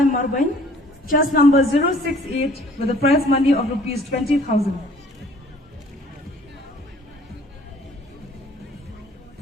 MARWEIN, chest number 068 with a prize money of rupees 20,000.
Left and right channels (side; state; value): both; normal; correlation 0.54